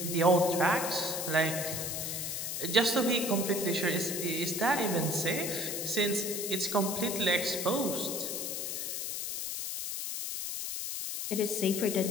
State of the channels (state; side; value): noise; left; hiss, 3 dB below the sound